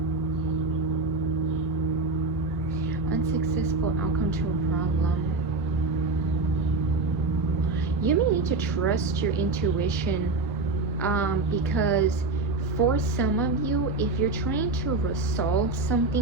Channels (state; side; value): quieter; left; 3.5 dB